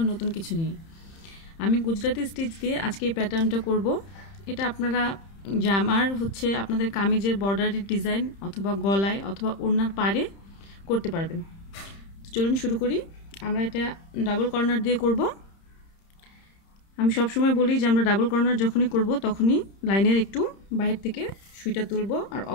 নতুন কিছু নিয়ে। আমি গুজরাটি স্টিচ দিয়ে আজকে এই প্যাটার্নটা করব। এটা আপনারা জামার আপনাদের কামিজের বর্ডারের ডিজাইন অথবা গলায় অথবা ওড়নার পাড়ে করতে পারবেন। তো চলুন শুরু করি। আমরা এটা ডাবল কর্নার দিয়ে করব। আমি সবসময় বলি যে আমরা ডাবল কর্নার যখনই করব তখনই লাইনের একটু বাইরে থেকে সুইটা তুলব, আর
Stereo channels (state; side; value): late; right; 30 ms